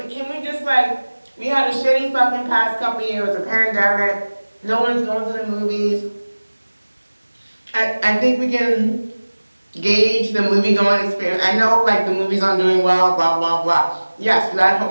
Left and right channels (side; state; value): both; inverted; correlation -1.00